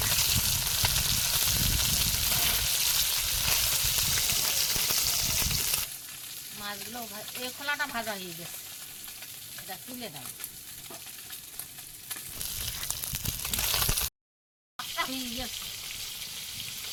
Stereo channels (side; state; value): both; identical; correlation 1.00